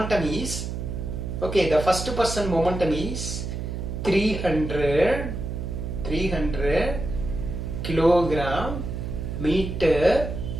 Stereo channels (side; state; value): right; noise; hum, 5 dB below the sound